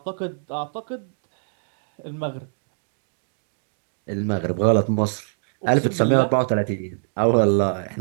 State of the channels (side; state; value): left; silent; digital silence